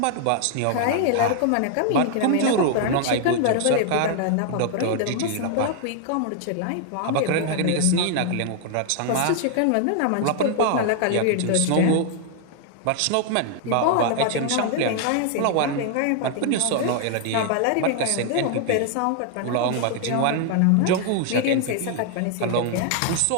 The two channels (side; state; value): both; different; correlation 0.00